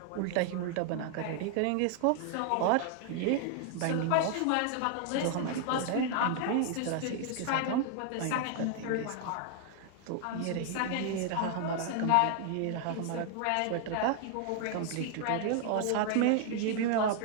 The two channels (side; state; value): both; different; correlation 0.00